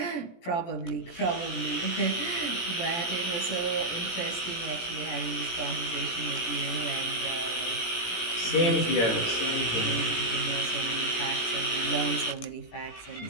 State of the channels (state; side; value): late; right; 17 ms